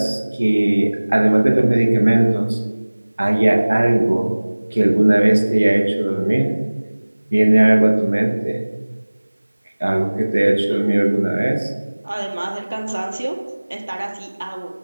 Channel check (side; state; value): both; inverted; correlation -1.00